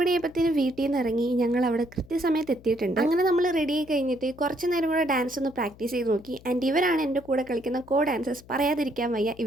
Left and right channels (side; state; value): left; noise; hum, 22 dB below the sound